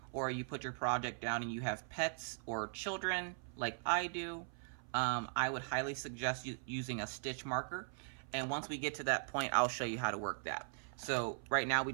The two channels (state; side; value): silent; left; 51 dB below the other